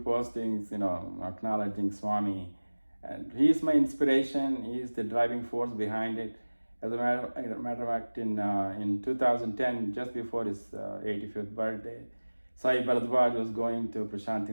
acknowledging Swami, and he's my inspiration. He's the driving force behind it. As a matter of fact, in 2010, just before his 85th birthday, Sai Bharadwaj was going to Prashanti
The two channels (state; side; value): inverted; both; correlation -1.00